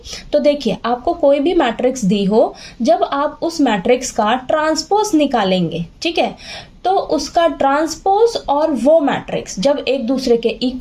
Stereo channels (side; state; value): both; identical; correlation 1.00